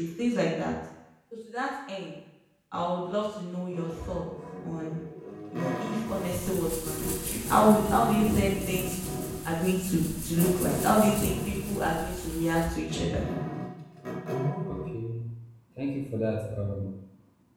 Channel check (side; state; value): both; identical; correlation 1.00